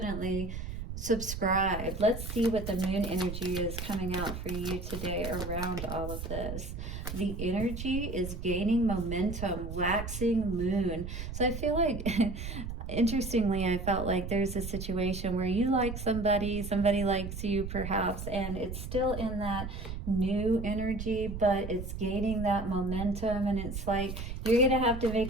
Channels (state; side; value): noise; right; rumble, 7 dB below the sound